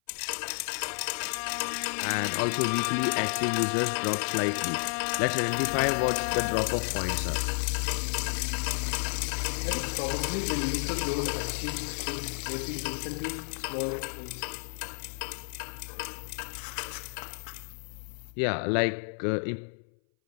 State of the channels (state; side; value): silent; right; 57 dB below the other